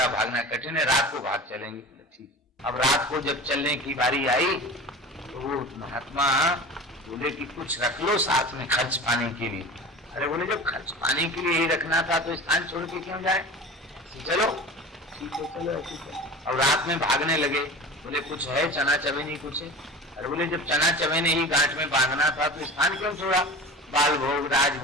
भागना कठिन है, रात को भाग चलेंगे। ठीक। अब रात को जब चलने की बारी आई तो वो महात्मा बोले कि कुछ रख लो साथ में खर्च पाने के लिए। अरे बोले जब खर्च पाने के लिए ही रखना था तो स्थान छोड़ के क्यों जाए, चलो ठीक है चलो। अब रात में भागने लगे। बोले कुछ है चना चवेनी कुछ है। अरे बोले जब चना चवेने ही गांठ में बांधना था तो स्थान क्यों छोड़ा। बाल भोग,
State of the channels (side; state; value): both; normal; correlation 0.35